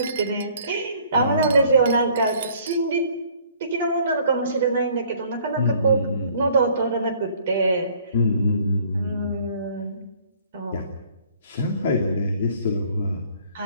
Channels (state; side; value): inverted; both; correlation -0.58